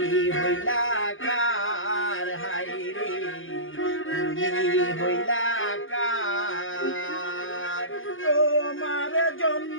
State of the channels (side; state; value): right; late; 0.58 ms